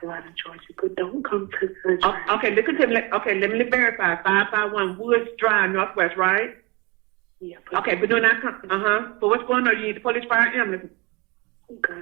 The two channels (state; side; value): quieter; left; 26.2 dB